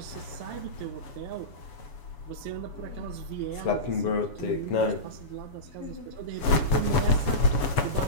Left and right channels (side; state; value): right; late; 7.0 ms